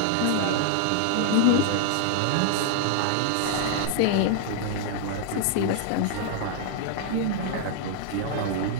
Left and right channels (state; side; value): different; both; correlation -0.01